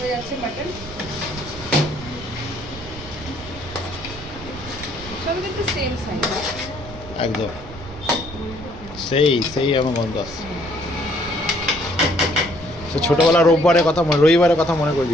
যাচ্ছে মাটন, সব কিন্তু সেম সাইজ, একদম সেই সেই আমার গন্ধ আসছে। সে ছোটবেলা রবিবারের কথা মনে করে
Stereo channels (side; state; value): right; noise; rumble, 15 dB below the sound